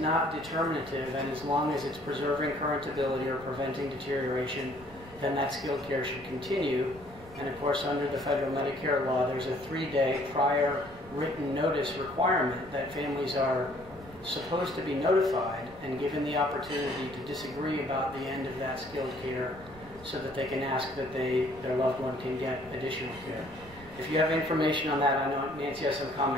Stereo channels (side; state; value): right; noise; rumble, 20 dB below the sound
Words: determinative, and as long as it's preserving current ability or preventing deterioration, then that skilled care should continue. And of course, under the federal Medicare law, there's a 3-day prior written notice requirement that families are supposed to be notified and given the opportunity to disagree about the end of that skilled care so that they can ask that their loved one can get additional care. If you have information on that, I know Nancy has some